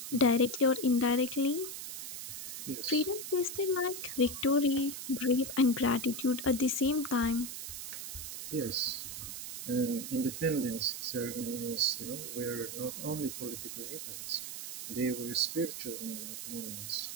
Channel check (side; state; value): right; noise; hiss, 7 dB below the sound